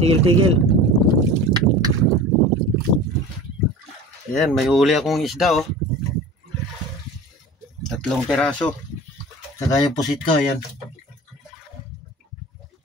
Ayan, may huli akong isda oh. 3 peraso. Saka yung pusit ko, ayan.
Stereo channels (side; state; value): both; normal; correlation 0.38